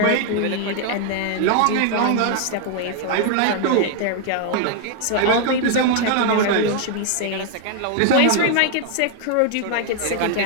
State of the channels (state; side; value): different; both; correlation 0.00